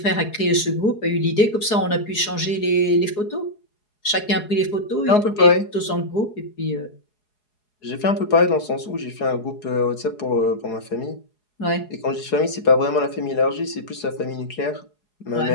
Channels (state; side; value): late; right; 4.8 ms